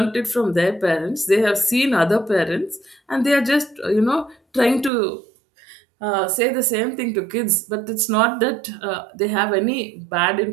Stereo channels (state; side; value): drops out; left; at 4.9 s